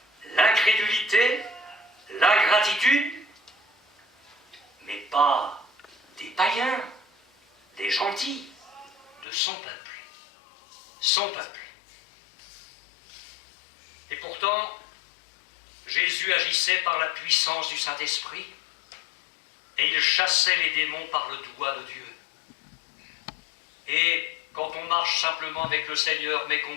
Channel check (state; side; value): drops out; right; at 9.2 s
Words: l'incrédulité, l'ingratitude, mais pas des païens, des gentils, de son peuple. Son peuple. Et pourtant, Jésus agissait par la puissance du Saint-Esprit et il chassait les démons par le doigt de Dieu. Et quand on marche simplement avec le Seigneur, mais